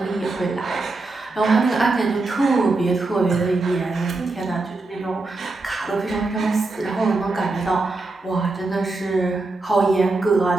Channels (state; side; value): quieter; left; 3.3 dB